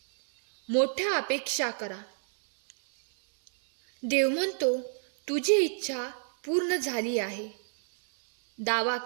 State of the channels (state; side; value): silent; left; 59 dB below the other